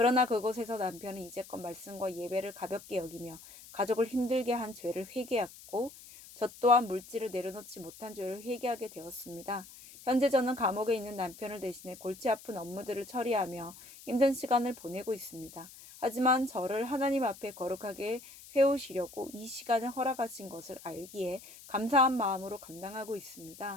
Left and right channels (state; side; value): noise; left; hiss, 18 dB below the sound